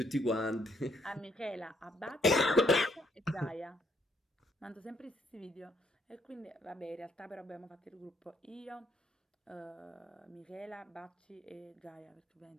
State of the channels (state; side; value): normal; both; correlation 0.70